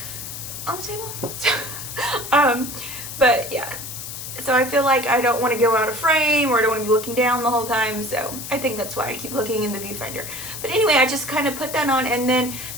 on the table. But yeah, so I feel like I don't want to go out of frame, or I don't want to be looking down the whole time, so I think that's why I keep looking in the viewfinder. But anyway, I just kind of put that on, and then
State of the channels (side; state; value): left; noise; hiss, 9 dB below the sound